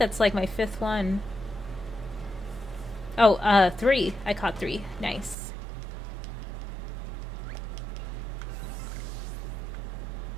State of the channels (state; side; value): drops out; left; at 5.4 s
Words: like my 5th one. Oh, 3. I caught 3. Nice.